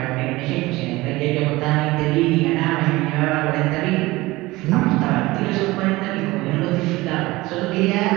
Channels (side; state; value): left; quieter; 20.1 dB